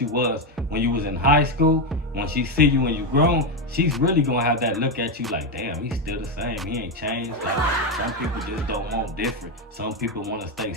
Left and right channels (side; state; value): both; normal; correlation 0.08